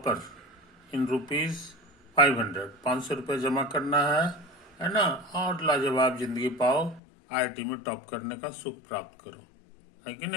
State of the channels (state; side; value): drops out; right; at 7.0 s